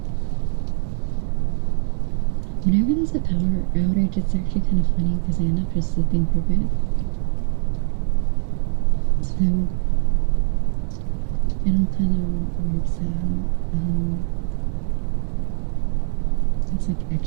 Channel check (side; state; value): left; silent; digital silence